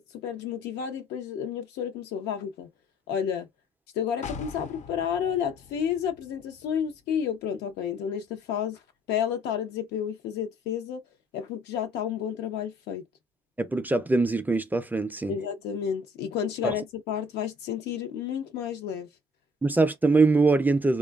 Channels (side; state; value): both; normal; correlation 0.60